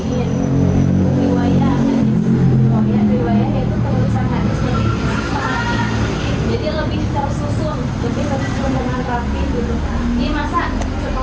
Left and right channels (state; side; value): identical; both; correlation 1.00